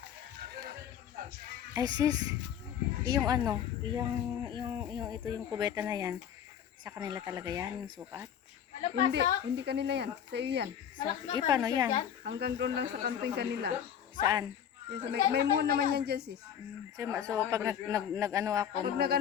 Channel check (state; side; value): quieter; right; 9.0 dB